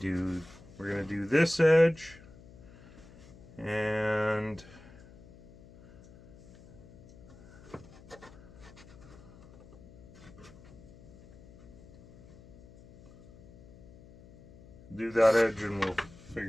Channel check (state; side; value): noise; left; hum, 21 dB below the sound